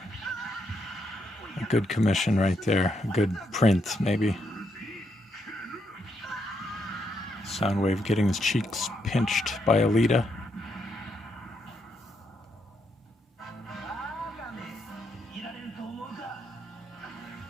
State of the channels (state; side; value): normal; both; correlation 0.78